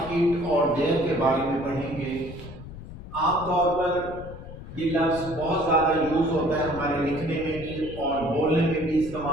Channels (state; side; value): noise; left; rumble, 13 dB below the sound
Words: it और देयर के बारे में पढ़ेंगे। आमतौर पर ये लफ्ज बहुत ज़्यादा यूज होता है, हमारे लिखने में भी और बोलने में भी